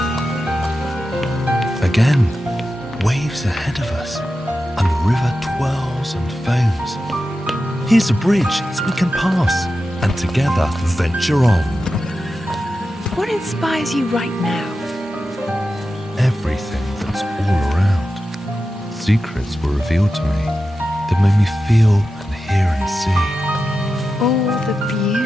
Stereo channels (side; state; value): both; normal; correlation 0.91